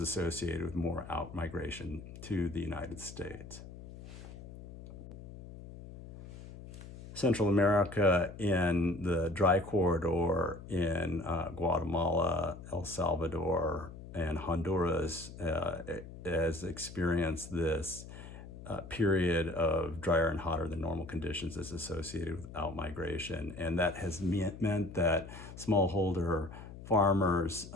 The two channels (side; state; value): left; noise; hum, 14 dB below the sound